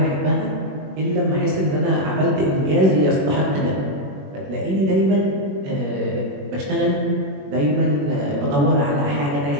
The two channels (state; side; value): late; left; 21 ms